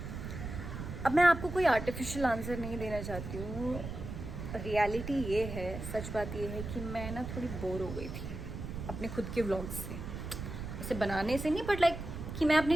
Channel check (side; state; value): right; noise; rumble, 7 dB below the sound